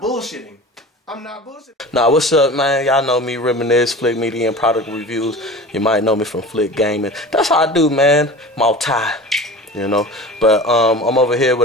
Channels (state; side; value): normal; both; correlation 0.36